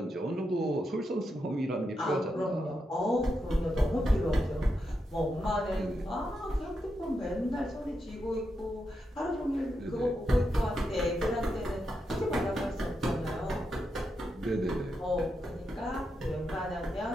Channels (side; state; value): both; normal; correlation 0.85